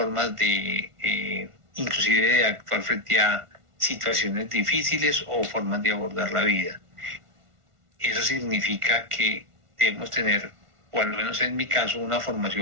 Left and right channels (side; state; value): left; late; 1.5 ms